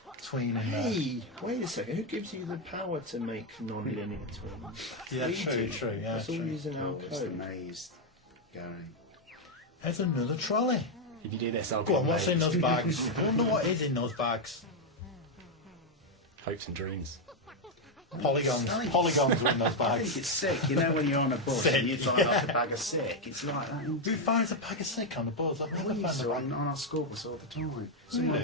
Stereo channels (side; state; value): both; normal; correlation 0.02